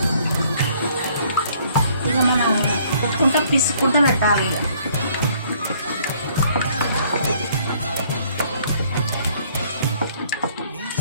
ఇక మనం కొట్టుకుంటూ పిసుకుంటూ పెట్టాలి.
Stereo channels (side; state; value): both; inverted; correlation -0.62